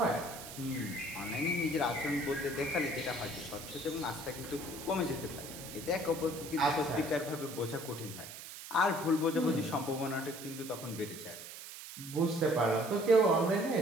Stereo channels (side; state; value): right; noise; hiss, 12 dB below the sound